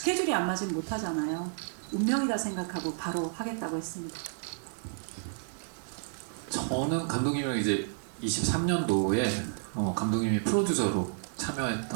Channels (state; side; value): silent; left; digital silence